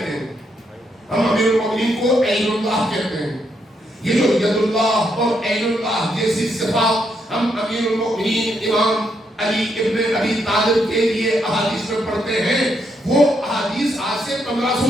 ہیں، ہم امیر المومنین کو عین اللہ کہتے ہیں. یہ جو ید اللہ اور عین اللہ جیسی صفات ہم امیر المومنین امام علی ابن ابی طالب کے لیے احادیث میں پڑھتے ہیں، وہ احادیث آج سے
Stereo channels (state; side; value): normal; both; correlation 0.77